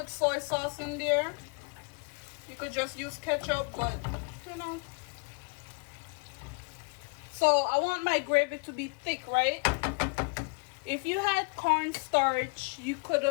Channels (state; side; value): quieter; right; 32.5 dB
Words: soy sauce in there. You could just use ketchup, but you know. So I want my gravy to be thick, right? If you had cornstarch, you could